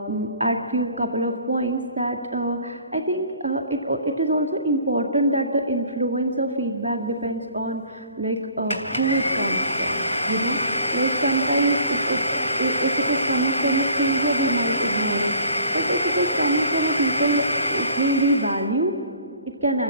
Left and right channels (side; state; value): both; inverted; correlation -0.52